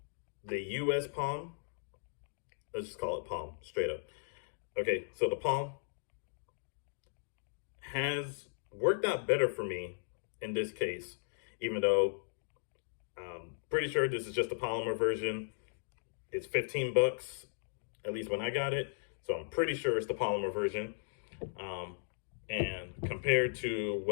US Palm, let's just call it Palm straight up. Okay, so the Palm has worked out better for me in this case, even though I'm pretty sure this is just a polymer version. It's 15 bucks, at least when I got it. So I'm pretty sure it's the polymer version. And compared to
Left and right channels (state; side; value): silent; right; digital silence